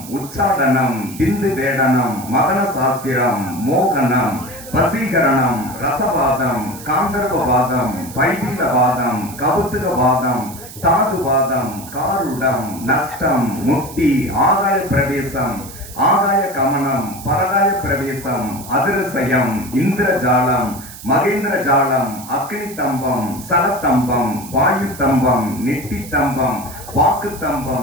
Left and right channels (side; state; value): right; noise; hiss, 15 dB below the sound